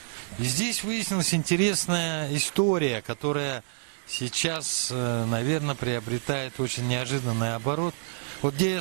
И здесь выяснилась интересная история, которая сейчас, наверное, приобретает очень неожиданный оборот. Вот где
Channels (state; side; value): silent; left; digital silence